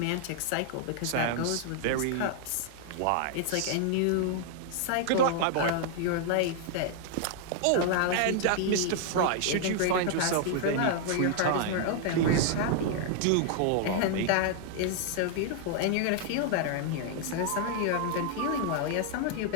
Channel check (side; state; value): both; different; correlation 0.00